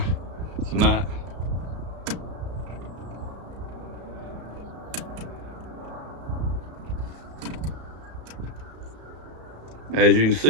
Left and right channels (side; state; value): left; late; 34 ms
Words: tonight. As you can